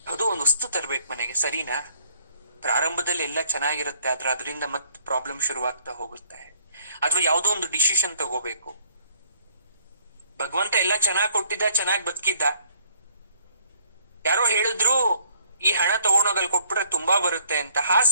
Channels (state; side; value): inverted; both; correlation -0.62